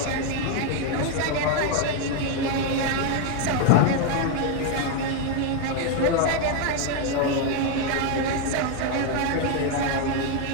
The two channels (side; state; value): both; different; correlation 0.01